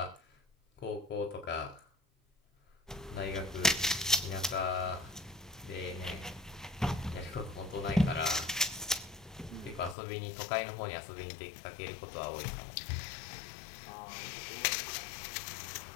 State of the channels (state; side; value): drops out; right; at 10.0 s